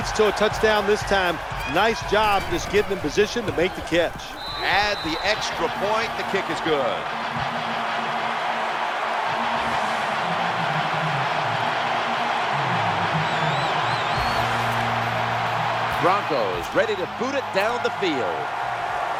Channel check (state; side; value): identical; both; correlation 1.00